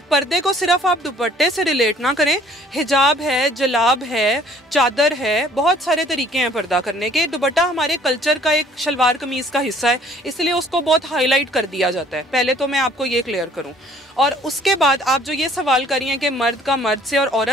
पर्दे को सिर्फ आप दुपट्टे से रिलेट ना करें, हिजाब है, जलाब है, चादर है, बहुत सारे तरीके हैं पर्दा करने के। दुपट्टा हमारे कल्चर का एक शलवार कमीज़ का हिस्सा है, इसलिए उसको बहुत हाईलाइट कर दिया जाता है। पहले तो मैं आपको ये क्लियर करूं, और उसके बाद आप जो ये सवाल करी हैं कि मर्द का मर्द से और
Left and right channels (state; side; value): normal; both; correlation 0.56